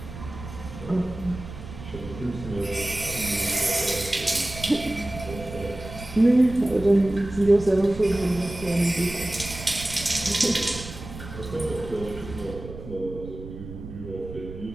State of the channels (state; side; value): noise; right; rumble, 12 dB below the sound